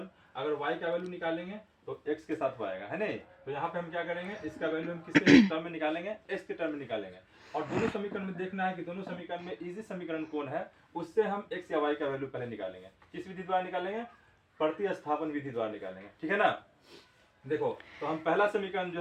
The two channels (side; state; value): both; identical; correlation 1.00